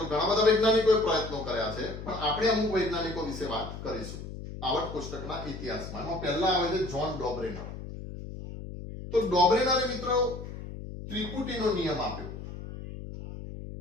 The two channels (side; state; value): left; noise; hum, 10 dB below the sound